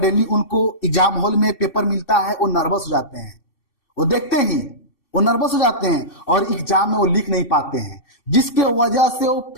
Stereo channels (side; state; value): right; late; 2.6 ms